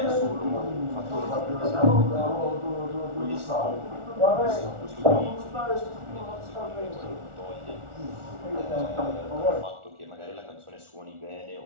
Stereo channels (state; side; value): late; left; 1.4 ms